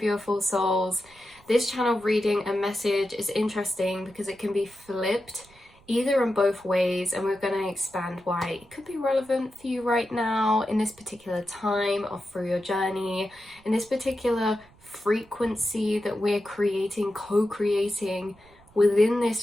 souls. This channel reading and message is interesting because it can be flipped either in both ways, and we're going to expand why it could be relevant for you right now in this particular time or through your journey, in this particular frequency that we're creating, co-creating within this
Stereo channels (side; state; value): right; noise; rumble, 28 dB below the sound